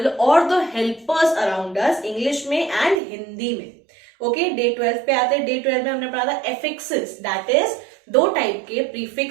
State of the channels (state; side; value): drops out; left; at 3.0 s